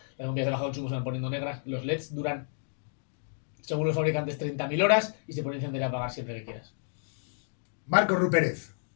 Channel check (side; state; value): right; silent; digital silence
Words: las bombillas de bajo consumo se van poniendo negras, los LEDs duran, según los fabricantes, 30.000 horas y se pueden encender y apagar siempre que quieras. Marcos Rupérez,